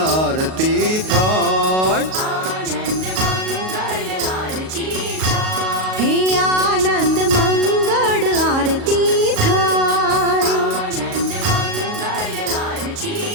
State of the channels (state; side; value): late; left; 38 ms